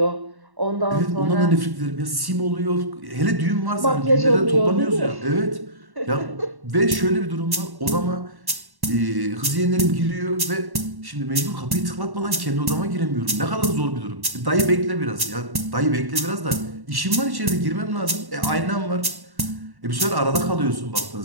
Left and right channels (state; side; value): late; left; 1.1 ms